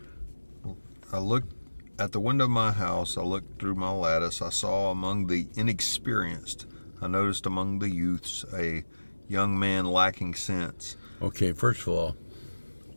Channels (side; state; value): both; inverted; correlation -1.00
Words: I looked at the window of my house. I looked through my lattice. I saw among the inexperienced, I noticed among the youths, a young man lacking sense. Okay, first of all,